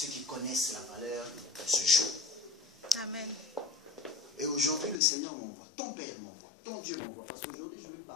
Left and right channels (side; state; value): right; drops out; at 5.0 s